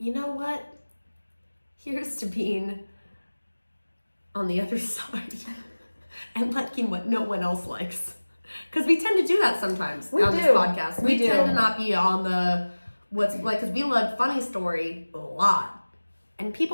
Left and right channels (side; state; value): both; inverted; correlation -1.00